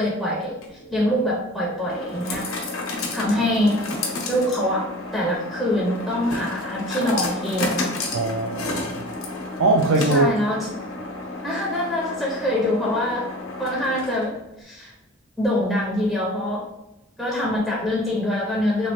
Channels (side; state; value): both; normal; correlation 0.38